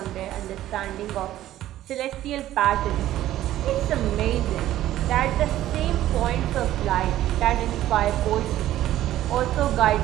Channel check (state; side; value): quieter; left; 13.6 dB